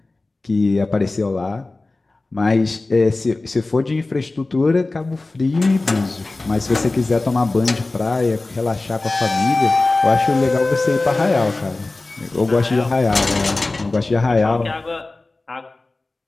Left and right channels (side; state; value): right; quieter; 3.2 dB